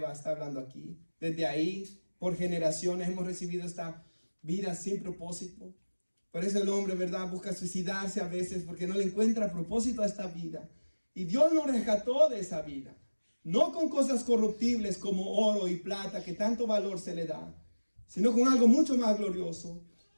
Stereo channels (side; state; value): both; inverted; correlation -1.00